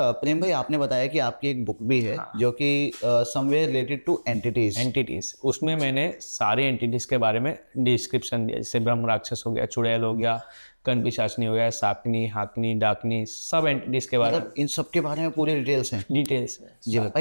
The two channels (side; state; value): both; inverted; correlation -1.00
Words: प्रेम भाई, आपने बताया कि आपकी एक बुक भी है जो कि somewhere related two entities. Entities, उसमें मैंने सारे एंटिटीज के बारे में डिस्क्रिप्शन दिया, जैसे ब्रह्म राक्षस हो गया, चुड़ैल हो गया, कण पिशाचनी हो गया, साकनी, हाकनी, डाकनी, सब एंटिटीज के बारे में मतलब इन सब के बारे में पूरी डिटेल्स हैं। डिटेल्स में। जी